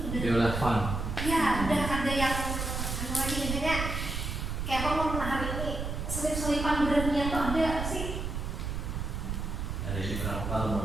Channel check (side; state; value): right; noise; rumble, 3 dB below the sound